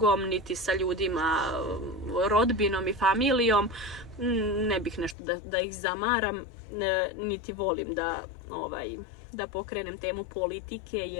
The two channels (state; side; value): drops out; right; at 5.2 s